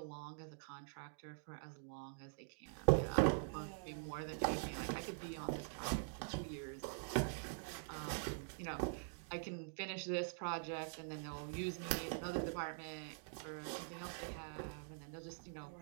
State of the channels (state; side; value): silent; left; digital silence